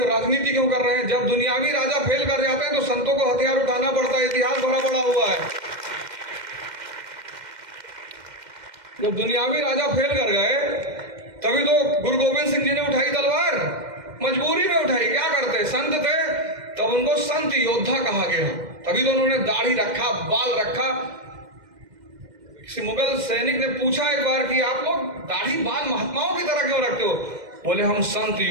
राजनीति क्यों कर रहे हैं? जब दुनियावी राजा फेल कर जाते हैं तो संतों को हथियार उठाना पड़ता है। इतिहास भरा पड़ा हुआ है। जब दुनियावी राजा फेल कर गए तभी तो गुरु गोविंद सिंह जी ने उठाई तलवार, मजबूरी में उठाई। क्या करते? संत थे, तब उनको संत योद्धा कहा गया। तभी तो उन्होंने दाढ़ी रखा, बाल रखा। किसी मुगल सैनिक ने पूछा एक बार कि आप लोग दाढ़ी बाल महात्माओं की तरह क्यों रखते हो? बोले हम संत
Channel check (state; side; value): late; left; 2.1 ms